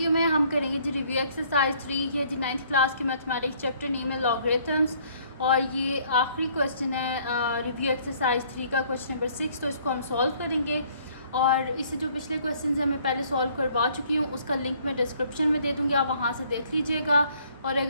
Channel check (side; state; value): both; inverted; correlation -0.61